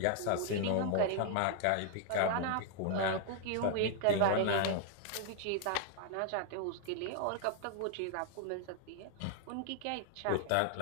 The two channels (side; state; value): both; different; correlation 0.00